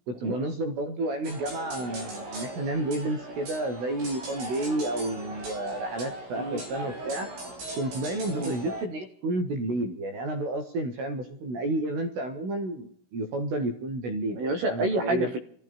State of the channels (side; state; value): left; late; 16 ms